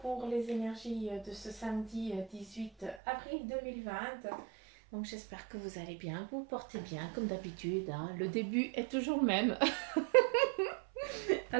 les énergies de ce samedi 18 avril 2020. Donc j'espère que vous allez bien, que vous vous portez bien comme d'habitude, hein. Le début est toujours le même.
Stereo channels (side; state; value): left; drops out; at 3.0 s